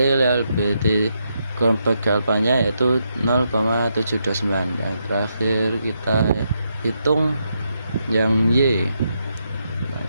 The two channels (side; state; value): both; inverted; correlation -0.81